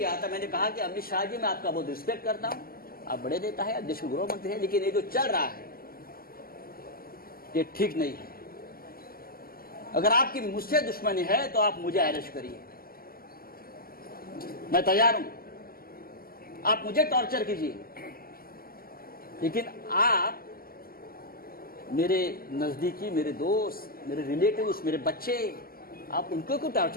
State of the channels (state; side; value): late; right; 0.43 ms